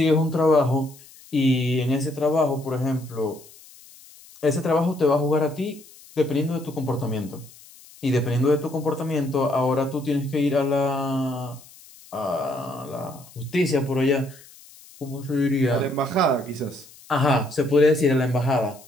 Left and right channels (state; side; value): noise; left; hiss, 23 dB below the sound